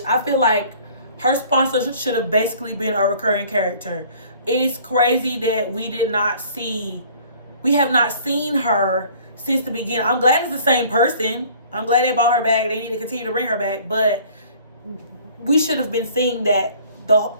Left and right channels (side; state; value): both; inverted; correlation -0.53